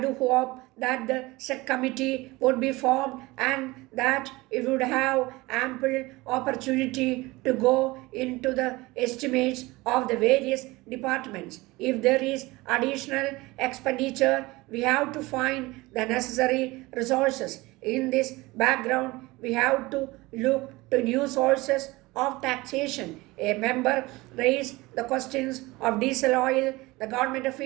hope that the said committee would be formed and that it would have ample opportunity to go into the estimates of the various departments. If there is additional expenditure, we have to find the necessary resources. In this background, we have to look to new sources of taxation. A member raised the questions of diesel oil. The government of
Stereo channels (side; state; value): left; quieter; 21.3 dB